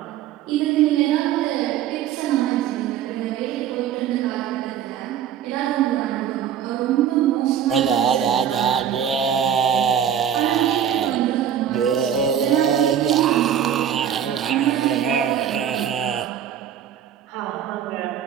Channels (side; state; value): left; quieter; 9.3 dB